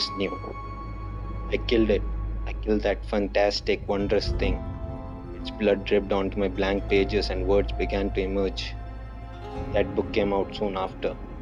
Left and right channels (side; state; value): both; identical; correlation 1.00